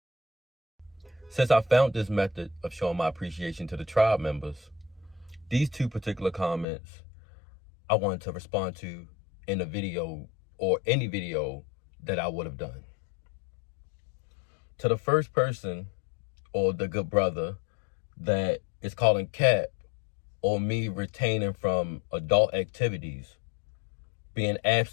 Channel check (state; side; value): drops out; right; at 6.7 s